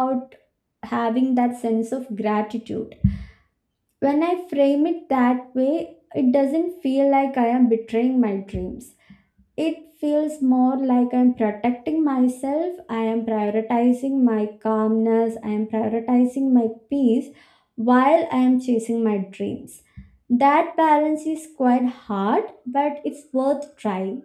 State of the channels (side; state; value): both; identical; correlation 1.00